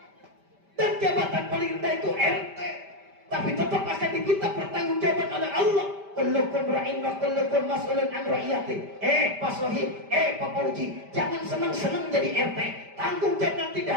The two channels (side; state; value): left; late; 5.1 ms